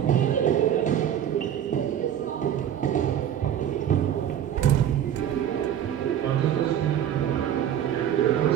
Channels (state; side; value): quieter; left; 10.2 dB